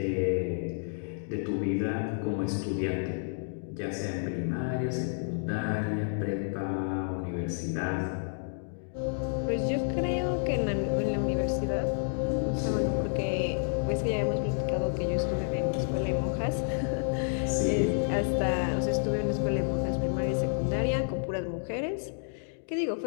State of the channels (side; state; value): right; silent; digital silence